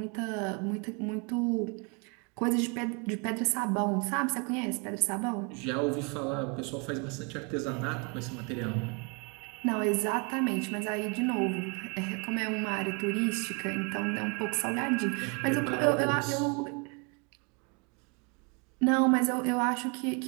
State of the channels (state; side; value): quieter; left; 33.1 dB